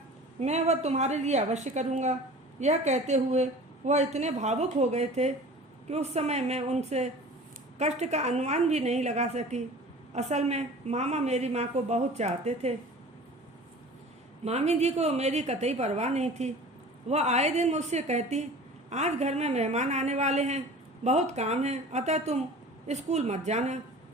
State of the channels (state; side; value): normal; both; correlation 0.41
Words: मैं वह तुम्हारे लिए अवश्य करूँगा। यह कहते हुए वह इतने भावुक हो गए थे कि उस समय मैं उनसे कष्ट का अनुमान भी नहीं लगा सकी। असल में मामा मेरी माँ को बहुत चाहते थे। मामी जी को मेरी कतई परवाह नहीं थी। वह आए दिन मुझसे कहती, आज घर में मेहमान आने वाले हैं, बहुत काम है, अतः तुम स्कूल मत जाना,